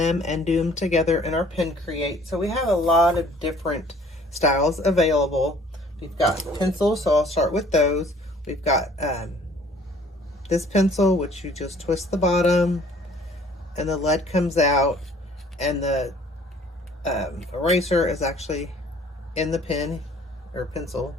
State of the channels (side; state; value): both; normal; correlation 0.54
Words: and do them together in our Pin Create. So we have a lot of different styles available. We've got pencils, so I'll start with those. We've got this pencil, which you just twist the bottom and the lead comes out, and the eraser is actually in the pen or pencil